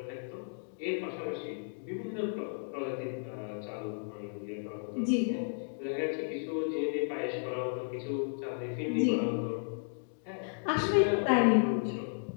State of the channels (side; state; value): right; silent; digital silence